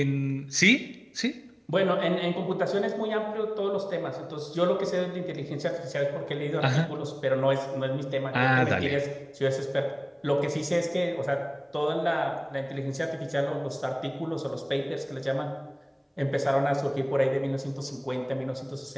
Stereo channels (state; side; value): identical; both; correlation 1.00